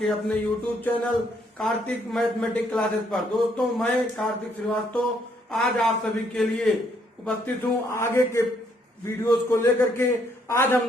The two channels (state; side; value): normal; both; correlation 0.70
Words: अपने YouTube channel Kartik mathematics classes पर। दोस्तों, मैं कार्तिक श्रीवास्तव आज आप सभी के लिए उपस्थित हूँ आगे के वीडियोस को लेकर के। आज हम